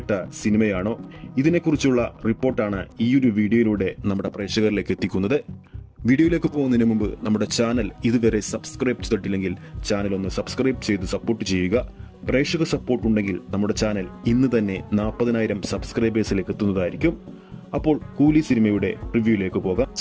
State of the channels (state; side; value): identical; both; correlation 1.00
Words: സിനിമയാണോ? ഇതിനെക്കുറിച്ചുള്ള റിപ്പോർട്ടാണ് ഈ ഒരു വീഡിയോയിലൂടെ നമ്മുടെ പ്രേക്ഷകരിലേക്ക് എത്തിക്കുന്നത്. വീഡിയോയിലേക്ക് പോകുന്നതിന് മുമ്പ് നമ്മുടെ ചാനൽ ഇതുവരെ സബ്സ്ക്രൈബ് ചെയ്തിട്ടില്ലെങ്കിൽ ചാനൽ ഒന്ന് സബ്സ്ക്രൈബ് ചെയ്ത് സപ്പോർട്ട് ചെയ്യുക. പ്രേക്ഷക സപ്പോർട്ട് ഉണ്ടെങ്കിൽ നമ്മുടെ ചാനൽ ഇന്ന് തന്നെ 40,000 സബ്സ്ക്രൈബേഴ്സിലേക്ക് എത്തുന്നതായിരിക്കും. അപ്പോൾ കൂലി സിനിമയുടെ റിവ്യൂയിലേക്ക് പോകാം.